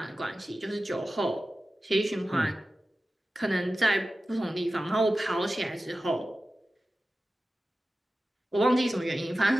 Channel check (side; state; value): both; normal; correlation 0.95